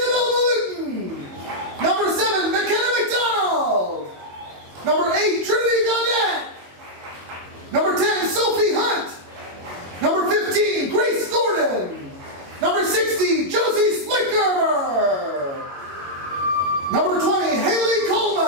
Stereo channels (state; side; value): late; left; 22 ms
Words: Malutin. Number 7, McKenna McDonald. Number 8, Trinity Gaudette. Number 10, Sophie Hunt. Number 15, Grace Gordon. Number 60, Josie Splicker. Number 20, Haley